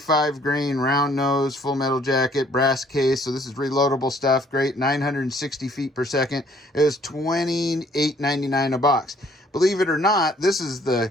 grain round nose full metal jacket, brass case. So this is reloadable stuff. Great, 960 feet per second. It was $28.99 a box. Believe it or not, this is the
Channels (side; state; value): both; normal; correlation 0.61